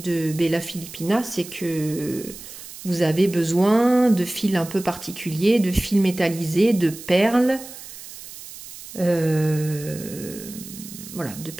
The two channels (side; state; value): right; noise; hiss, 14 dB below the sound